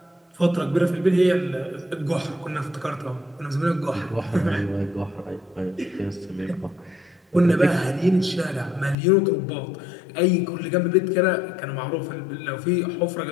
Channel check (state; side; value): drops out; right; at 9.0 s